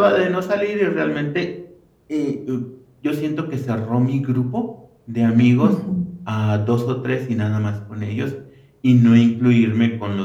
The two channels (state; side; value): identical; both; correlation 1.00